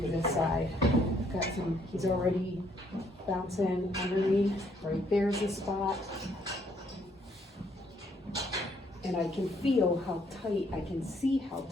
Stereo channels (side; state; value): both; normal; correlation 0.68